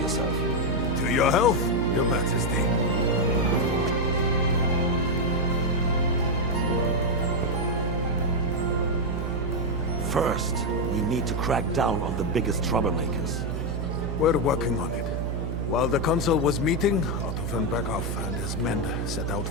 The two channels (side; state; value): right; noise; hum, 2 dB below the sound